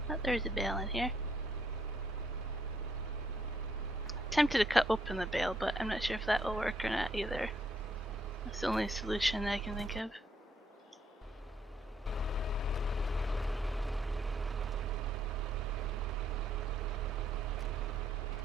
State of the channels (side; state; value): both; normal; correlation 0.71